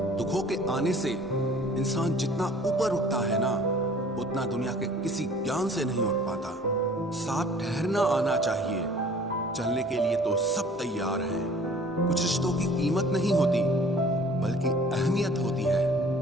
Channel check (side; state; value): both; normal; correlation 0.51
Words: दुखों के आने से इंसान जितना ऊपर उठता है ना, उतना दुनिया के किसी ज्ञान से नहीं उठ पाता। साथ ठहरना आना चाहिए, चलने के लिए तो सब तैयार हैं। कुछ रिश्तों की कीमत नहीं होती बल्कि अहमियत होती